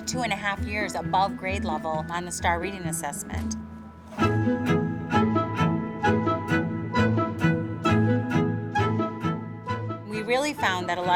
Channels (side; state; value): both; identical; correlation 1.00